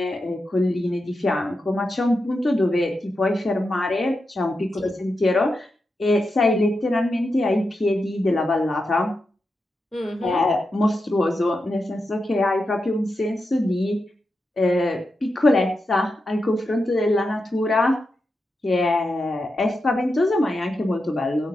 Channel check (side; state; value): both; normal; correlation 0.88